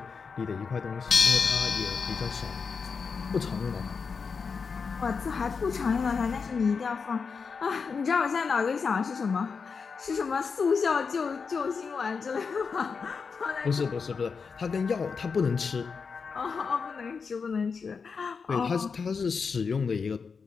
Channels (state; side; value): quieter; right; 5.4 dB